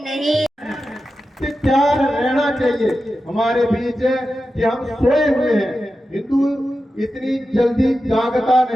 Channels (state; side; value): normal; both; correlation 0.91